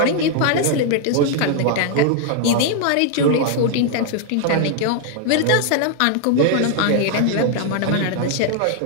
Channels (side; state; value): both; different; correlation 0.00